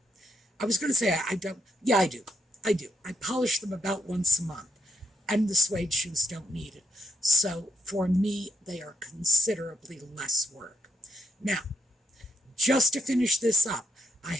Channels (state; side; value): normal; both; correlation 0.78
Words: I was going to say I don't. Yeah, I do. I do. I polish them about once a month, and the suede shoes don't need it. So for me, they are considerably less work. Now, just to finish this up, I